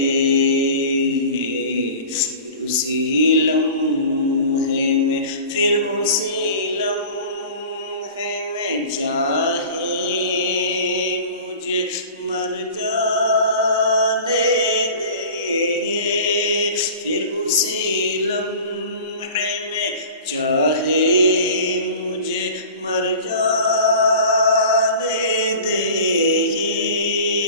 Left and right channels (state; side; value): inverted; both; correlation -0.39